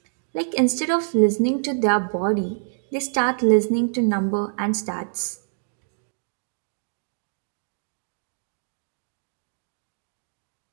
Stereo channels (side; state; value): left; silent; digital silence